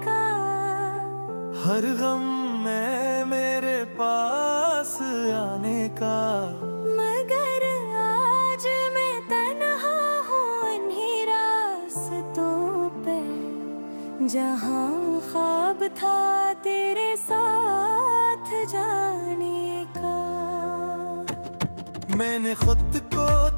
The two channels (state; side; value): inverted; both; correlation -1.00